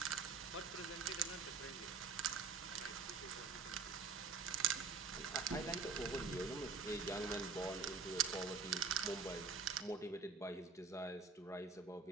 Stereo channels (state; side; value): quieter; left; 5.0 dB